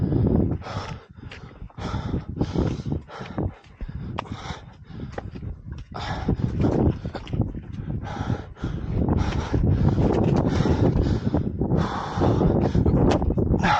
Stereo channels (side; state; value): both; identical; correlation 1.00